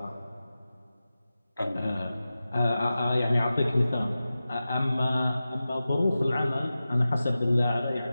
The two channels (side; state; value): both; inverted; correlation -0.94